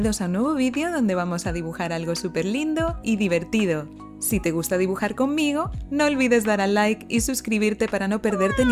a un nuevo vídeo donde vamos a dibujar algo súper lindo y divertido. Si te gusta dibujar conmigo, no olvides dar al like y suscribirte para no perderte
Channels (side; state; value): both; identical; correlation 1.00